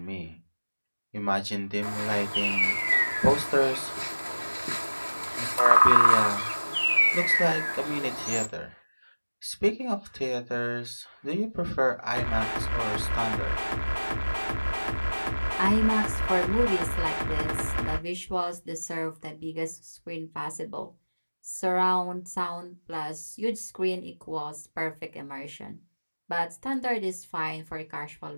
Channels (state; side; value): inverted; both; correlation -1.00